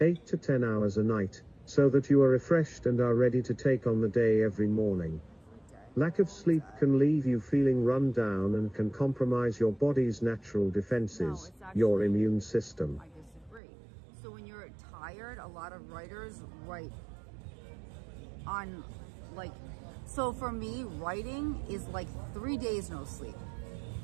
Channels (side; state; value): left; drops out; at 13.6 s